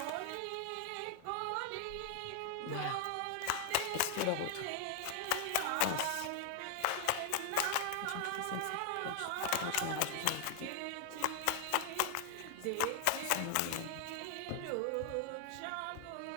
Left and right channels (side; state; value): both; different; correlation 0.00